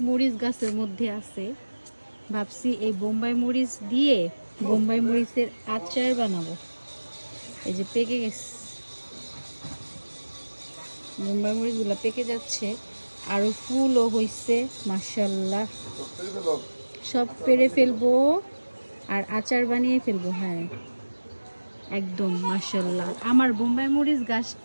মরিচ গাছের মধ্যে আছে। ভাবছি এই বোম্বাই মরিচ দিয়ে বোম্বাই মরিচের আচার বানাবো। এই যে পেকে গেছে, বোম্বাই মরিচগুলো পেকে যাচ্ছে, আরও ফুলও হয়েছে মাশাল্লাহ। সব পেরে ফেলবো আর আচার বানিয়ে ফেলবো। হ্যাঁ একদম মাশাল্লাহ। আমার বোম্বাই মরিচ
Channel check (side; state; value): both; inverted; correlation -1.00